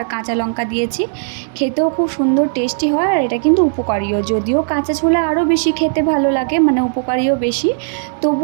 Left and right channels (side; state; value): left; silent; digital silence